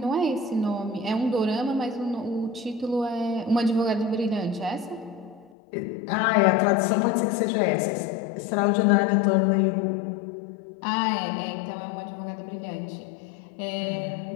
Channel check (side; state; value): right; drops out; at 5.5 s